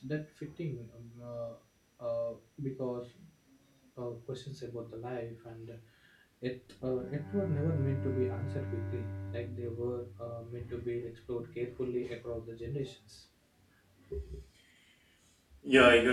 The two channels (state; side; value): identical; both; correlation 1.00